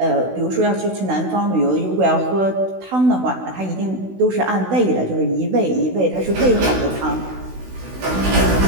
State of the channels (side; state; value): left; late; 16 ms